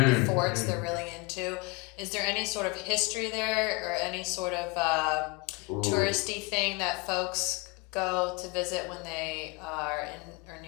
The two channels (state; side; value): quieter; right; 26.9 dB